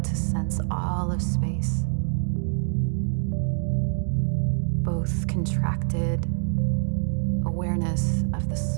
to sense all of space, both contracted awareness of the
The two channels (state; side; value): silent; left; digital silence